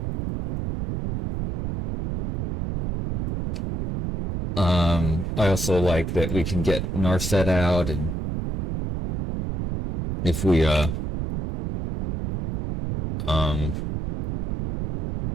I also like that we can get Narset out, and if we,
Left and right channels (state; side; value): noise; right; rumble, 4 dB below the sound